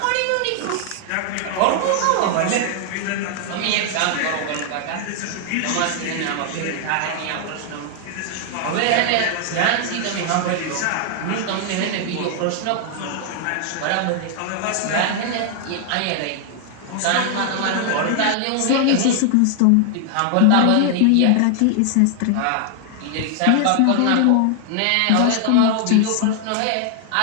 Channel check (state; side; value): different; both; correlation 0.00